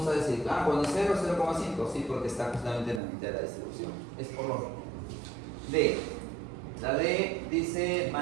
a decir, cuando 0, 0,5, sí, porque está justamente en la mitad de la distribución. Es por lo D. La D dice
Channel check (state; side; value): drops out; left; at 3.0 s